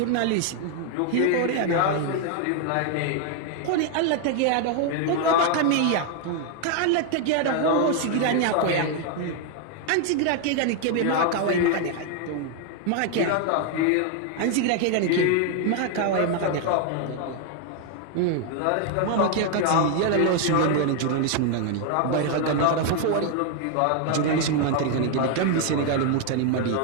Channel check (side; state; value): both; different; correlation 0.00